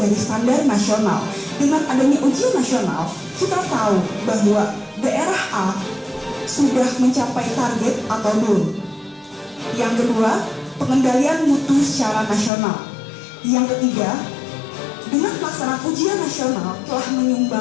standar nasional. Dengan adanya ujian nasional, kita tahu bahwa daerah A sudah mencapai target atau belum. Yang kedua, pengendalian mutu secara nasional. Yang ketiga, dengan pelaksanaan ujian nasional telah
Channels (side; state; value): right; drops out; at 12.5 s